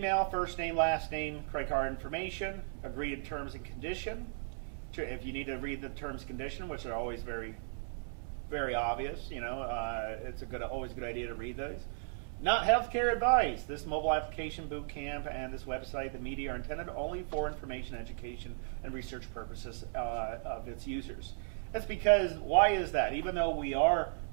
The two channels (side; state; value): left; silent; digital silence